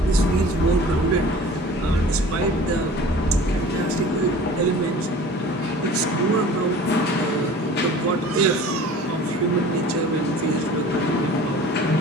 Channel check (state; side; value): normal; both; correlation 0.43